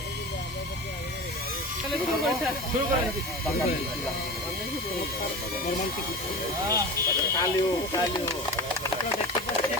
শুরু করেন। কালিও আপনারা দেখতে পাচ্ছেন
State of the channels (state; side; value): normal; both; correlation 0.30